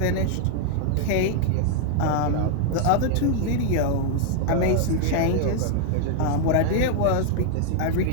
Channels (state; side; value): different; both; correlation 0.00